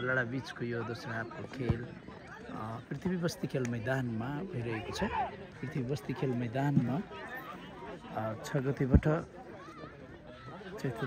बीचको यो दोस्रो हाफको खेल पृथ्वी बस्ती खेल मैदानमा भइरहेको छ। पृथ्वी बस्ती खेल मैदानमा 6 गतेबाट चैत्र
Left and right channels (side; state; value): both; identical; correlation 1.00